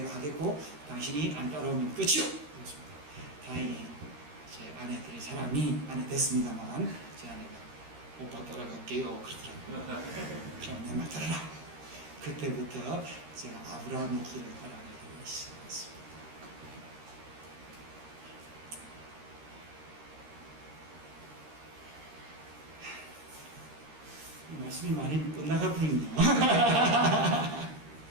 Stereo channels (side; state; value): left; late; 13 ms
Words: 하겠고 당신이 안 따라오면 끝이오. 그렇습니다. 다행히 제 아내 될 사람이 아내 됐습니다만 제 아내가 오빠 따라갈게요 그러더라고요. 그럼 내 말 따라라. 그때부터 제가 아브라함의 길을 따라가기 시작했습니다. 이 말씀이 많이 엇나가 버리네요.